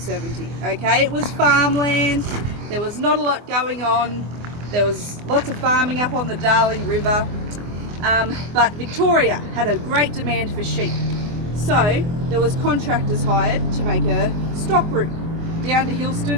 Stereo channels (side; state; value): left; late; 24 ms